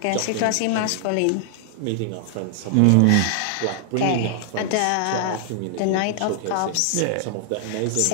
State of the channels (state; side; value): different; both; correlation 0.00